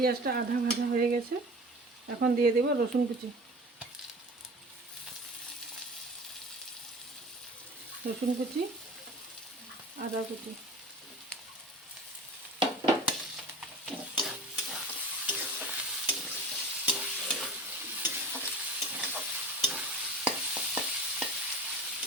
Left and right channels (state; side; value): normal; both; correlation 0.37